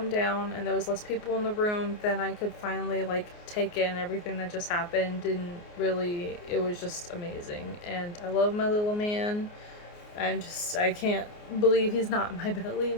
down and there was less people in the room, then I could finally like take in everything that just happened. And really, it was just amazing. And I love my little man. I can't believe he's not in my belly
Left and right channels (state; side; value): late; right; 29 ms